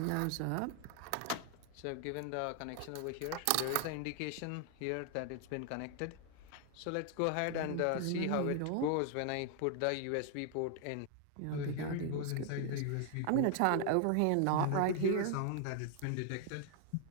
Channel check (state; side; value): different; both; correlation 0.00